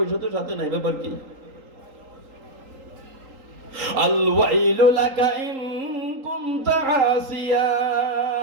তো সাথে নাই। ব্যাপার কি? আল ওয়াইলু লাকা ইন কুনতা আসিয়া,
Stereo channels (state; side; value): late; left; 3.8 ms